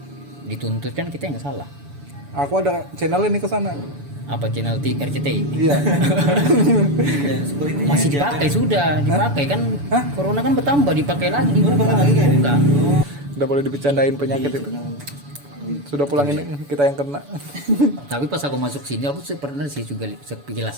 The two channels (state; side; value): late; left; 7.0 ms